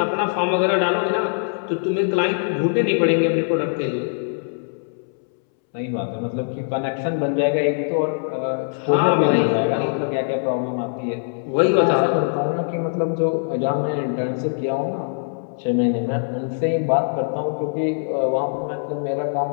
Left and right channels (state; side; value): silent; right; 64 dB below the other